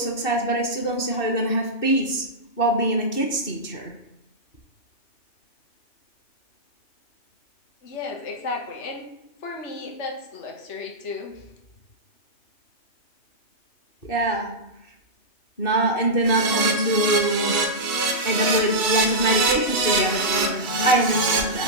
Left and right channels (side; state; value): right; late; 2.6 ms